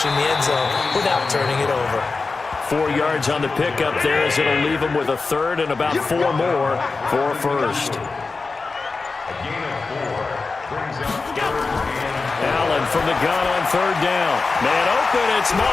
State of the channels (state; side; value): quieter; right; 4.1 dB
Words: the end zone without turning it over. 4 yards on the pickup there as it'll leave them with a third and about 4 more for a first. Allen from the gun on third down. Man open, it's